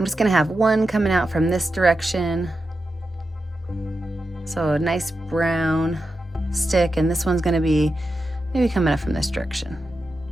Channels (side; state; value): both; normal; correlation 0.90